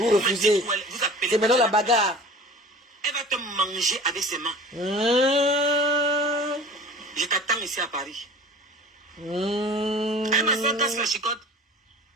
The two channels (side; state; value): both; normal; correlation 0.42